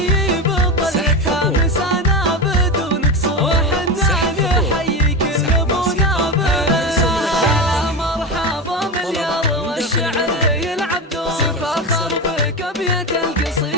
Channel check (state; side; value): normal; both; correlation 0.19